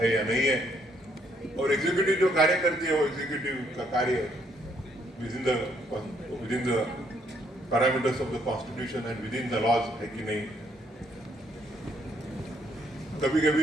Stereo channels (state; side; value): normal; both; correlation 0.70